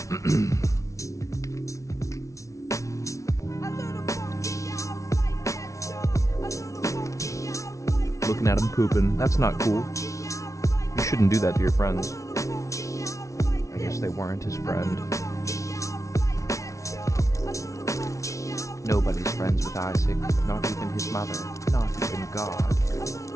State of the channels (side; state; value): right; late; 0.15 ms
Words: Looking at him pooping. That's not cool. You shouldn't do that to your friends. I guess they weren't his friend. Nobody's friends with Isaac, not even his mother, not even God.